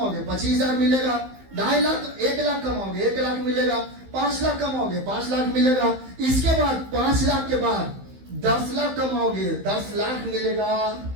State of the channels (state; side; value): late; left; 15 ms